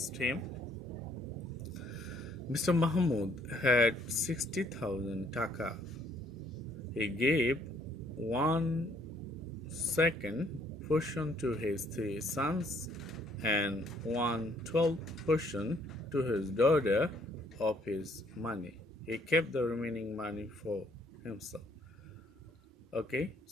Mr. Mahmood had 60,000 taka. He gave 1/2 portion to his 3 sons and 1/12 portion to his daughter of his money. He kept the remaining money for himself. Okay,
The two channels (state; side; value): normal; both; correlation 0.64